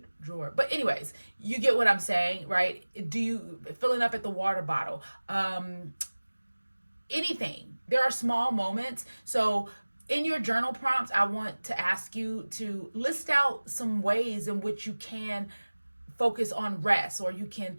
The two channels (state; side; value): inverted; both; correlation -1.00